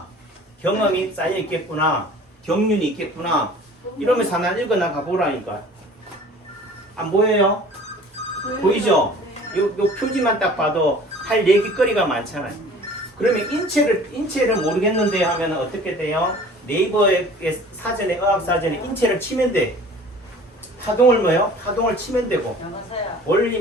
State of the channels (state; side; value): normal; both; correlation 0.46